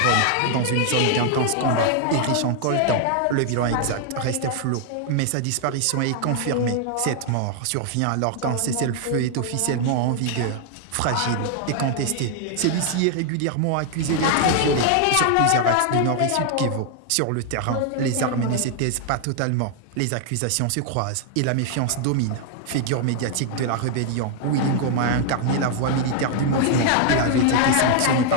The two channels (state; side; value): different; both; correlation 0.00